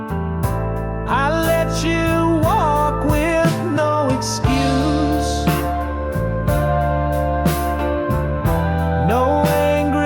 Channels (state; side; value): identical; both; correlation 1.00